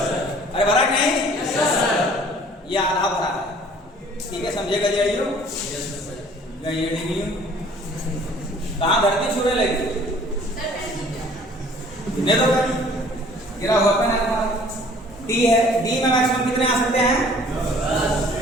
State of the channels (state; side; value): normal; both; correlation 0.53